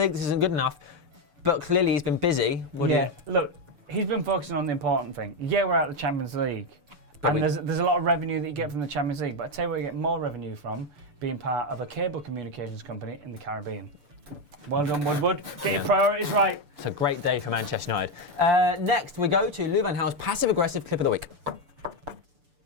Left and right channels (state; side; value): late; left; 6.8 ms